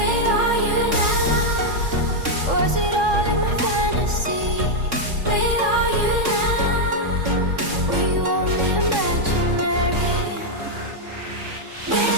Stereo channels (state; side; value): late; left; 3.6 ms